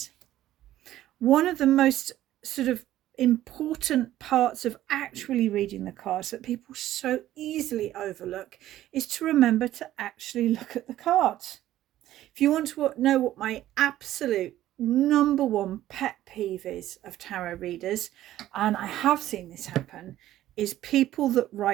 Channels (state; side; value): quieter; left; 13.7 dB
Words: One of the most sort of important parts of actually reading the cards that people so easily overlook is to remember to actually look at the cards. If you want to know what my absolute number 1 pet peeve is of tarot readers, and I have seen this happen, is people that